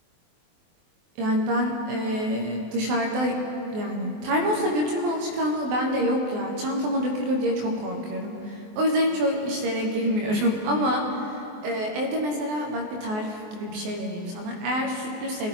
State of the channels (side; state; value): left; late; 23 ms